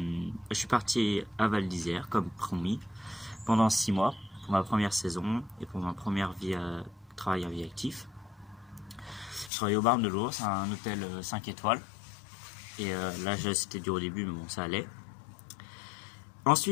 je suis parti à Val d'Isère, comme promis, pendant 6 mois, pour ma première saison et pour ma première travail en vie active. Je travaillais au Bar de l'Ours, un hôtel 5 étoiles. Et là, c'était dur au début, mais bon, ça allait.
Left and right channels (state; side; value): drops out; right; at 9.5 s